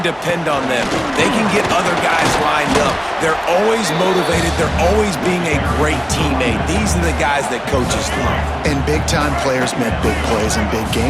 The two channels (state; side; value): identical; both; correlation 1.00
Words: depend on them. They can get other guys lined up. They're always motivated. They're always being a great teammate. These are the guys that coaches love. And big-time players make big plays in big